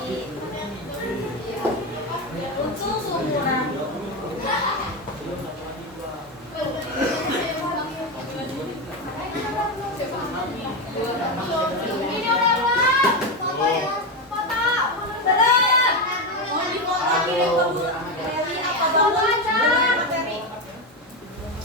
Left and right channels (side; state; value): both; normal; correlation 0.13